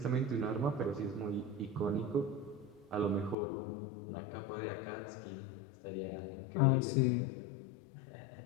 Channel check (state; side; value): drops out; right; at 3.4 s